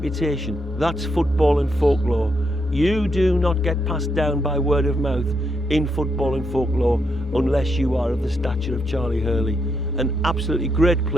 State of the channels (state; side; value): normal; both; correlation 0.79